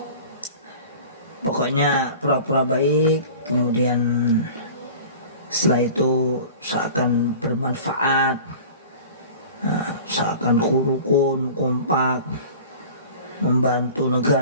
Pokoknya pura-pura baik, kemudian setelah itu seakan bermanfaat, seakan rukun, kompak, membantu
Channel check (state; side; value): inverted; both; correlation -0.41